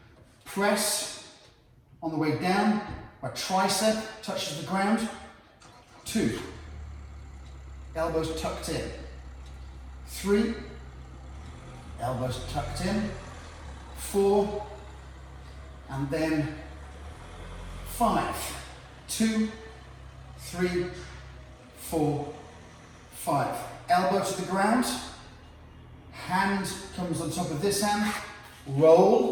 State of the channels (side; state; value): both; identical; correlation 1.00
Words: press on the way down, my tricep touches the ground. 2, elbows tucked in. 3, elbows tucked in. 4, and then 5. 2, 3, 4, 5. Elbow to the ground, hand comes on top of this hand,